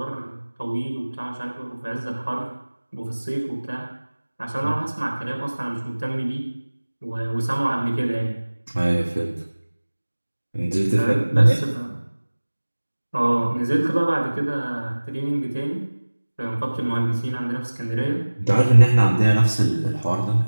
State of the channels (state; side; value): inverted; both; correlation -1.00